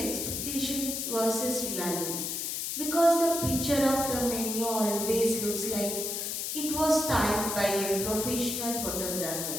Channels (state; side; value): noise; left; hiss, 3 dB below the sound